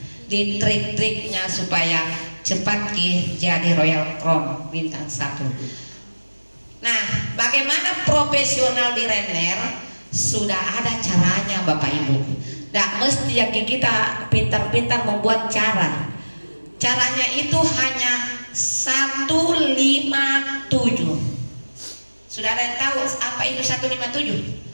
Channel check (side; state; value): both; inverted; correlation -1.00